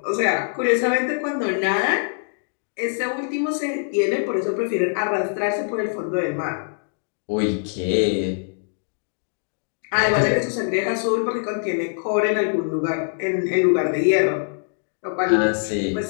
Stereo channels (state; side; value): silent; right; 63 dB below the other